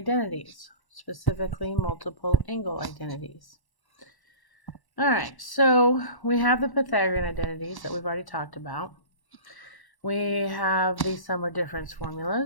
specifically multiple angle identities. Alright, so we have the Pythagorean identities that we've already talked about. We have the sum or difference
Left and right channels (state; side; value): late; right; 1.1 ms